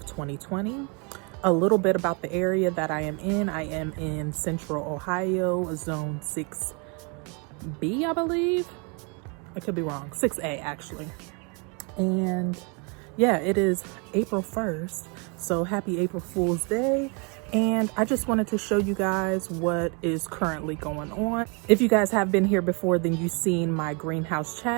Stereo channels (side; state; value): left; quieter; 33.4 dB